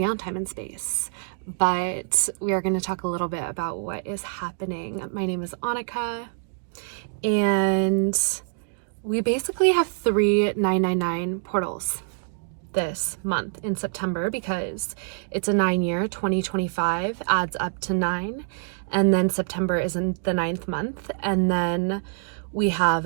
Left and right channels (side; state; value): left; silent; digital silence